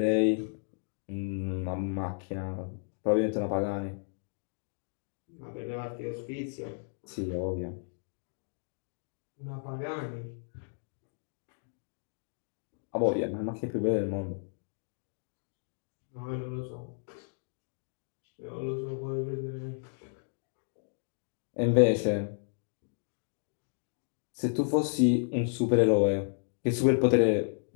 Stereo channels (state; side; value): silent; right; digital silence